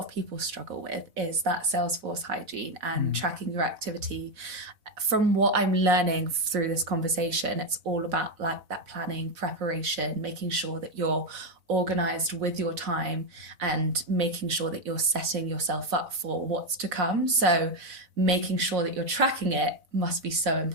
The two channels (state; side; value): late; left; 4.0 ms